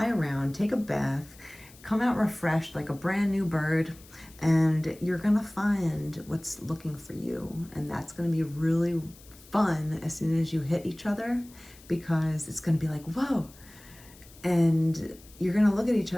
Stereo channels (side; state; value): left; noise; hiss, 23 dB below the sound